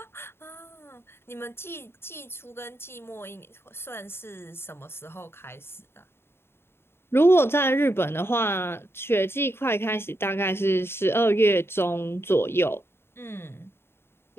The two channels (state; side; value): late; right; 0.11 ms